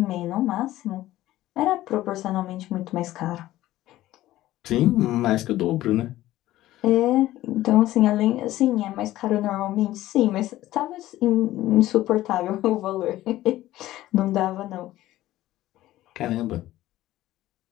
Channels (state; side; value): quieter; right; 15.3 dB